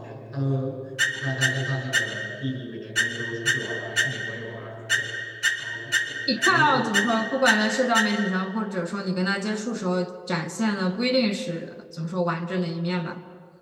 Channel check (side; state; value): both; identical; correlation 1.00